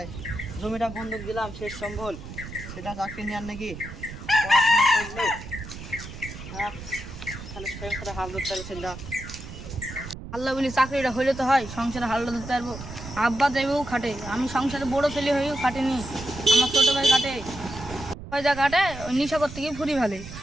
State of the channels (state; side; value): noise; right; rumble, 12 dB below the sound